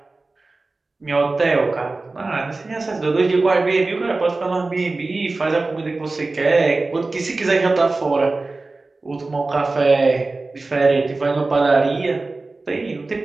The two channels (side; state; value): left; quieter; 3.4 dB